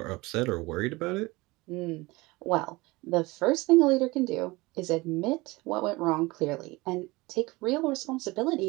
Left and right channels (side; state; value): left; quieter; 22.4 dB